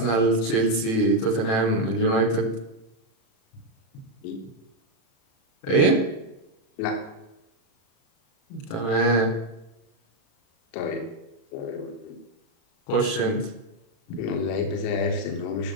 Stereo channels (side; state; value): right; late; 36 ms